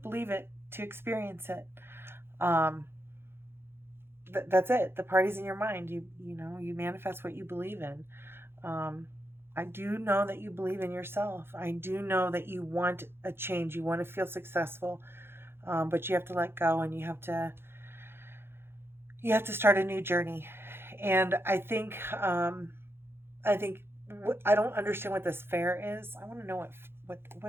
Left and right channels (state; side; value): late; left; 0.11 ms